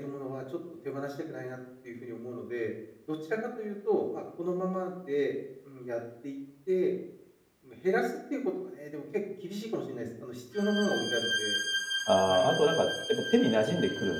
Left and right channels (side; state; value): both; identical; correlation 1.00